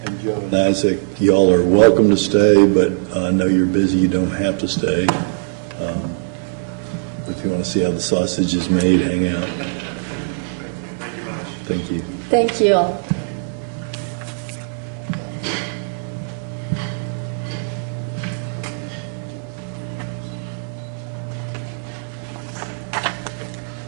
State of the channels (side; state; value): left; silent; digital silence